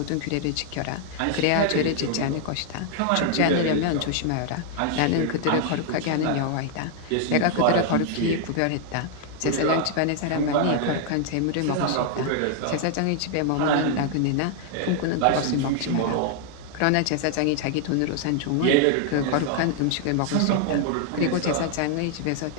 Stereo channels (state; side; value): different; both; correlation 0.00